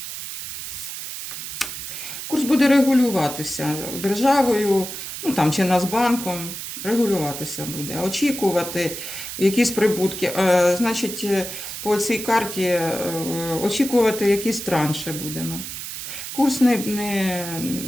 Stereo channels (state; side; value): noise; right; hiss, 8 dB below the sound